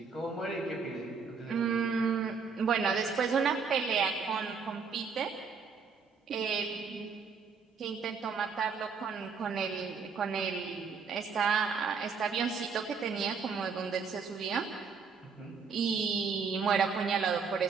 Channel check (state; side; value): quieter; left; 5.5 dB